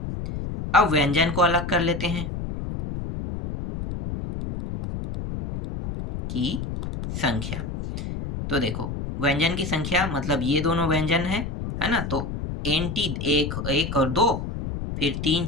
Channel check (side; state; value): left; noise; rumble, 5 dB below the sound